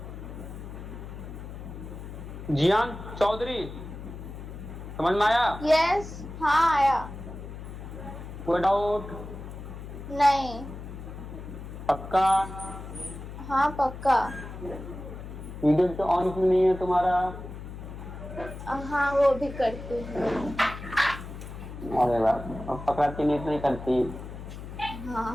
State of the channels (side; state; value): left; noise; hum, 11 dB below the sound